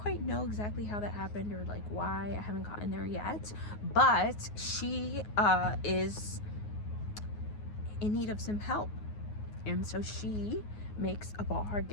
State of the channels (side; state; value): right; late; 9.5 ms